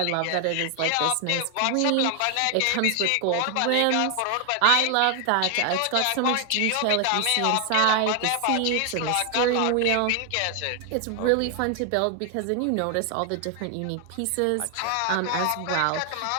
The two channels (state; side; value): different; both; correlation 0.00